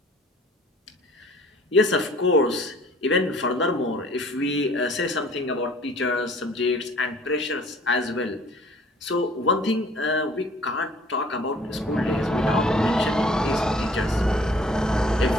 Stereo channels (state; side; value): normal; both; correlation 0.53